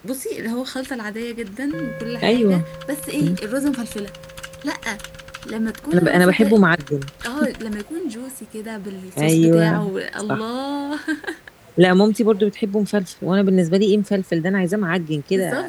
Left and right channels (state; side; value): identical; both; correlation 1.00